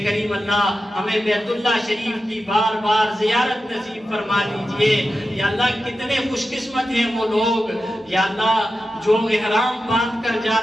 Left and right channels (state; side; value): normal; both; correlation 0.91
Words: کریم اللہ ہمیں بیت اللہ شریف کی بار بار زیارت نصیب فرما دیجئے، یا اللہ کتنے خوش قسمت ہیں وہ لوگ یا اللہ جو احرام باندھ کر جا